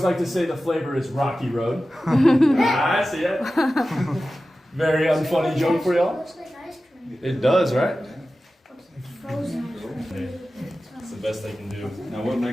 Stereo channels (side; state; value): both; normal; correlation 0.94